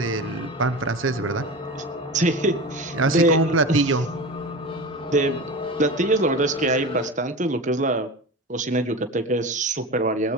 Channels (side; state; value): both; normal; correlation 0.29